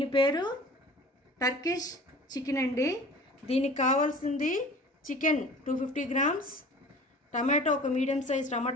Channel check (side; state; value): both; normal; correlation 0.43